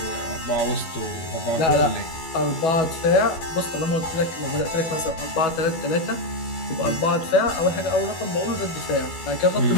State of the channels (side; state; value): right; late; 12 ms